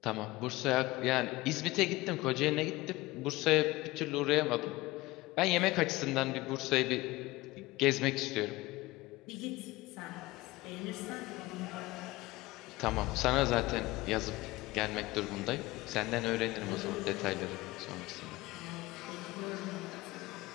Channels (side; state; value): right; quieter; 19.9 dB